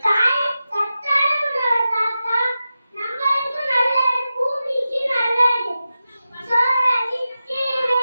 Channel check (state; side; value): inverted; both; correlation -0.92